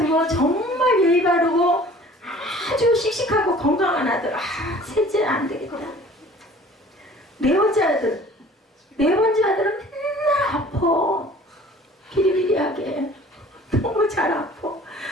정말 예의 바르고 아주 씩씩하고 건강한 아들. 셋째 안 되겠다. 네 번째 아들은 맨날 아파. 비리비리하게 너무 잘 아파.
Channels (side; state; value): both; normal; correlation 0.49